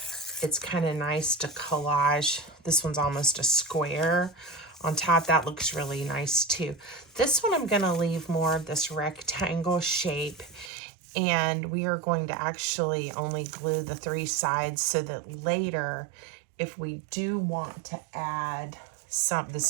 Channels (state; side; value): drops out; left; at 10.7 s